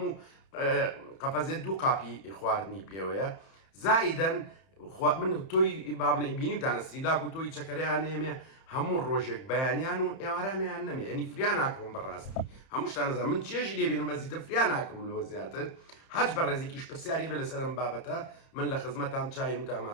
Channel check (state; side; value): late; right; 31 ms